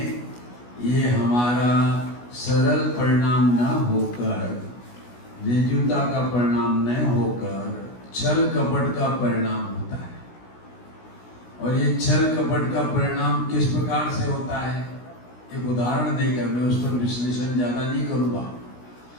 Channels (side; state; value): right; late; 16 ms